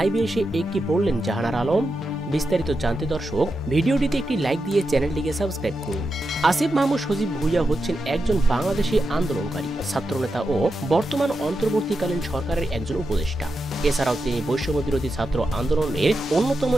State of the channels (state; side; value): normal; both; correlation 0.88